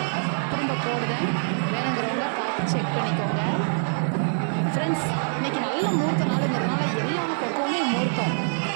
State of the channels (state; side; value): silent; left; digital silence